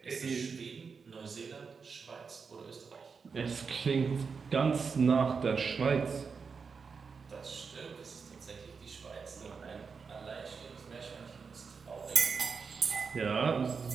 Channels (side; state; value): left; quieter; 5.4 dB